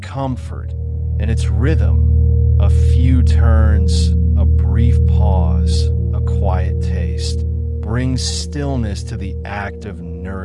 and its rhythm, a few turns, a brief pause, a quiet taste, brings stillness to the act of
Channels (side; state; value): both; identical; correlation 1.00